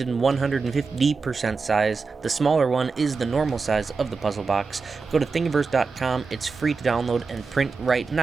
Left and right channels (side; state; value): left; quieter; 4.6 dB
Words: in 150% size. The smaller one is the normal size of the puzzle box. Go to Thingiverse.com, it's free to download and print right